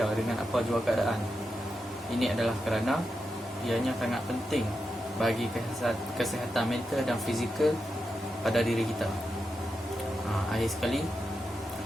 dengan apa jua keadaan. Ini adalah kerana ianya sangat penting bagi kesihatan mental dan fizikal pada diri kita. Akhir sekali,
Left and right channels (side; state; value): both; normal; correlation 0.88